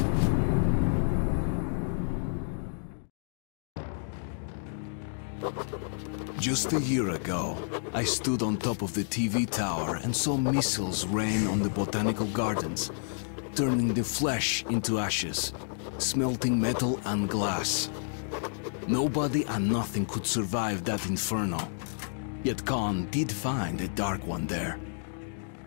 Just a year ago, I stood on top of the TV tower and saw missiles rain on the botanical gardens, turning the flesh into ashes, smelting metal and glass. Nobody and nothing could survive that inferno. Yet Khan did find a Dark One there.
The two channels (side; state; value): right; silent; digital silence